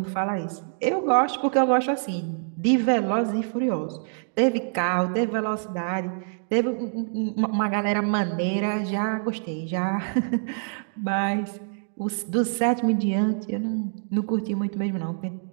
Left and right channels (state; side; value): silent; left; digital silence